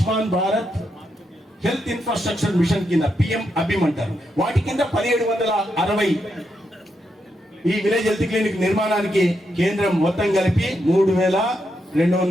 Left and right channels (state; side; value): normal; both; correlation 0.82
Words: Bharat health infrastructure machine కింద పిఎం అభిమ్ అంటారు, వాటి కింద 1760 ఈ విలేజ్ హెల్త్ క్లినిక్ నిర్మాణానికి కేంద్రం మొత్తం కలిపి